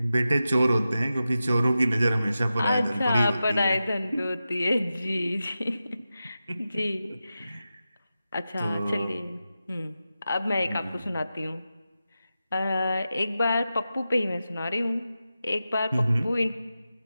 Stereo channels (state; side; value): inverted; both; correlation -0.92